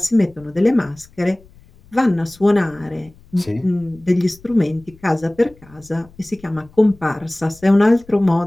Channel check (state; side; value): noise; left; rumble, 26 dB below the sound